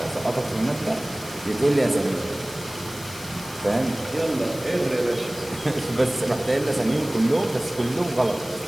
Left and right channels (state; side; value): noise; left; hiss, 15 dB below the sound